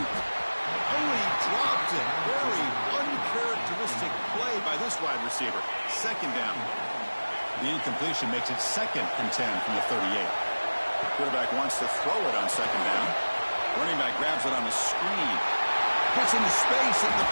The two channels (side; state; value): both; inverted; correlation -1.00